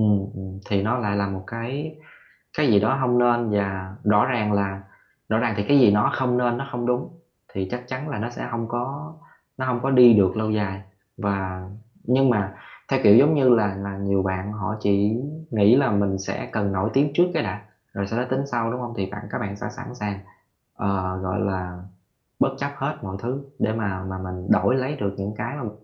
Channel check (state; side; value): identical; both; correlation 1.00